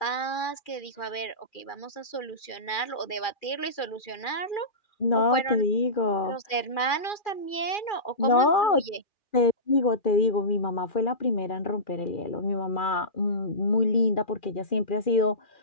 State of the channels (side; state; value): right; late; 2.4 ms